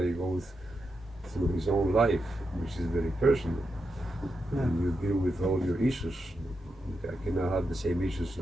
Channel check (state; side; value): normal; both; correlation 0.86